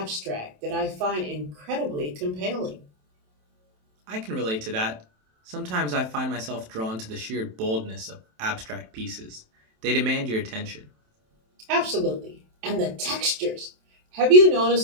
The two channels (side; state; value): left; late; 27 ms